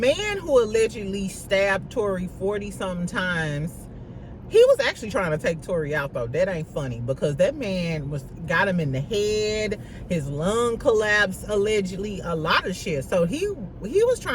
who allegedly stabbed Tory 40-something times, he was actually trying to take Tory out though. That ain't funny because that man got him in the head. His lung collapsed allegedly. A lot of shit. So he was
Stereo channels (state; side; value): identical; both; correlation 1.00